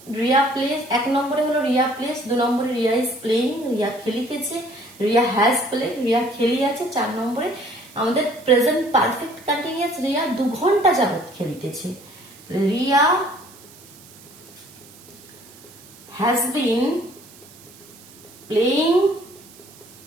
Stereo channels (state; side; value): noise; right; hiss, 22 dB below the sound